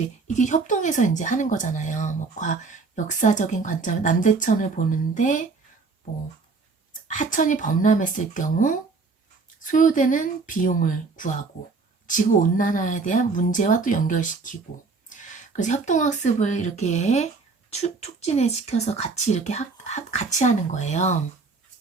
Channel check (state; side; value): quieter; left; 4.3 dB